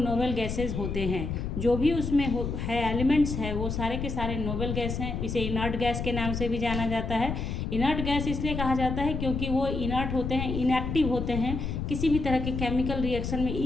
गैसेज होते हैं। जो भी उसमें है एलिमेंट्स है वो सारे के सारे नोबल गैस हैं। इसे इनर्ट गैस के नाम से भी जाना जाता है। इनर्ट गैस इसलिए कहा जाता है क्योंकि वो इनर्ट होते हैं, इनएक्टिव होते हैं, किसी भी तरह के केमिकल रिएक्शन में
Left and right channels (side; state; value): left; noise; rumble, 3 dB below the sound